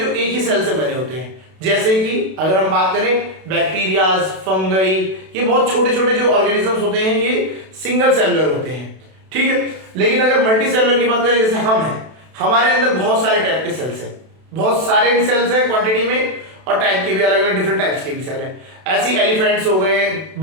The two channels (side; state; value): left; late; 32 ms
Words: जो एक ही सेल से बने होते हैं, जैसे कि अगर हम बात करें बैक्टीरियाज, फंगई, ये बहुत छोटे छोटे जो ऑर्गेनिजम्स होते हैं ये सिंगल सेलुलर होते हैं, ठीक है। लेकिन अगर मल्टी सेलुलर की बात करें, जैसे हम हैं, हमारे अंदर बहुत सारे टाइप के सेल्स हैं, बहुत सारे भी सेल्स हैं क्वांटिटी में, और टाइप के भी अलग अलग डिफरेंट टाइप्स के भी सेल हैं। ऐसी एलिफेंट्स हो गए,